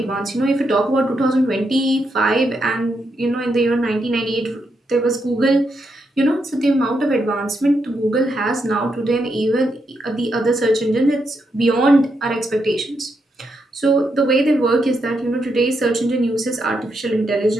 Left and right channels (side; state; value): both; normal; correlation 0.81